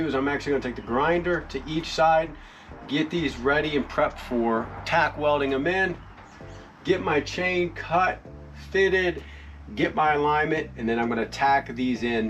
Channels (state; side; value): identical; both; correlation 1.00